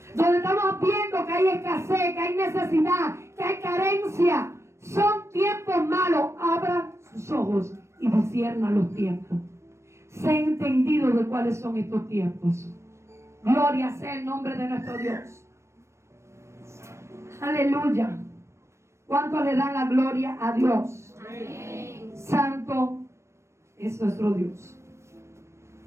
Donde estamos viendo que hay escasez, que hay necesidad, que hay carencia. Son tiempos malos. Abra sus ojos y discierna los tiempos. Sé entendido de cuáles son estos tiempos. Gloria sea el nombre de nuestro Dios. Aleluya. ¿Cuánto le dan la gloria a Dios? Amén. Santo es nuestro Dios.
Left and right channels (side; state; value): left; late; 0.13 ms